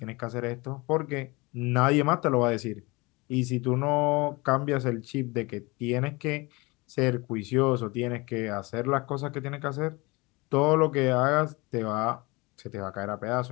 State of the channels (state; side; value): quieter; right; 24.8 dB